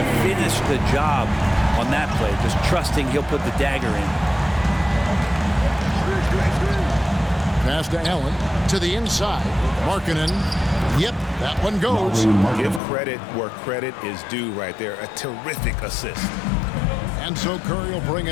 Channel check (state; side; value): drops out; right; at 12.8 s